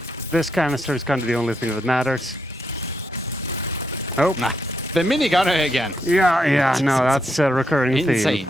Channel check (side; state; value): both; normal; correlation 0.80